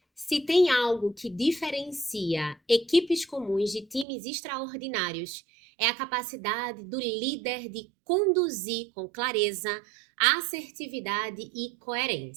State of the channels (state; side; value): drops out; left; at 4.0 s